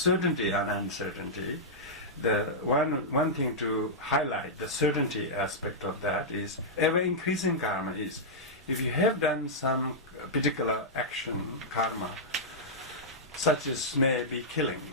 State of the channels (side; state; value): both; normal; correlation -0.10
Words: and uncertainty, the one thing to highlight, the certainty aspect of that is ever-increasing karma is, if you have done some particular action, karma, such as maybe killing